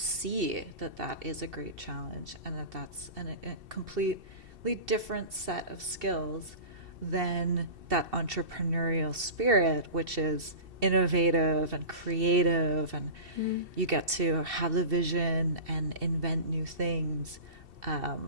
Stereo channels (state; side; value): late; left; 2.7 ms